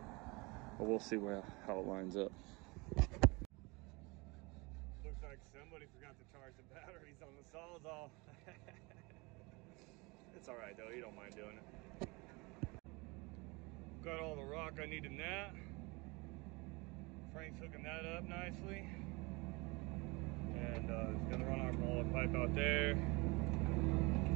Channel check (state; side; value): quieter; left; 26.2 dB